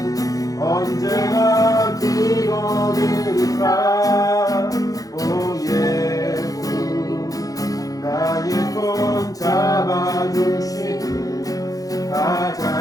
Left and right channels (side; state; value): right; late; 0.17 ms